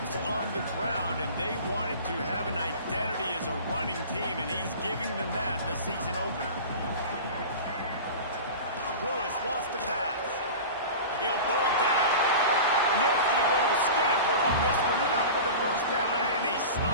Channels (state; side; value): inverted; both; correlation -0.33